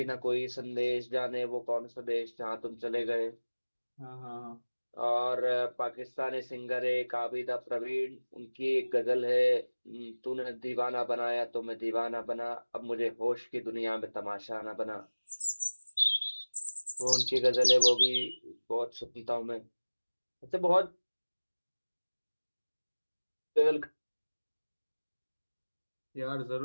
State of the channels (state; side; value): inverted; both; correlation -1.00